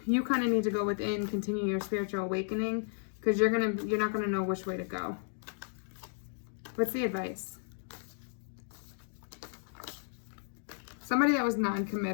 you kind of need to go within, continue your spiritual awakening, because you're not going to know which way to go. What's the advice? Somebody that was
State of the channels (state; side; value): silent; right; digital silence